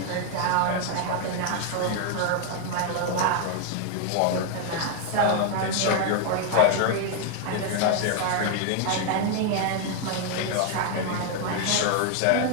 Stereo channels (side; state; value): both; different; correlation 0.01